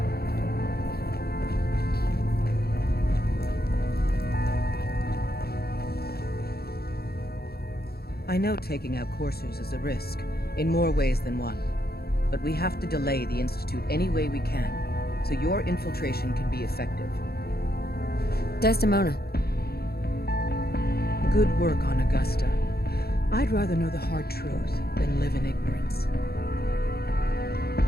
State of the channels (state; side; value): late; right; 0.46 ms